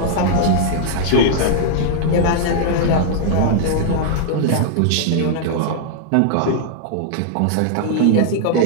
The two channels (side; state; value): both; different; correlation -0.01